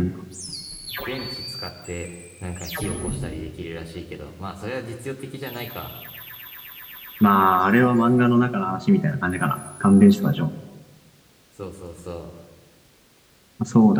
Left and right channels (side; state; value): both; identical; correlation 1.00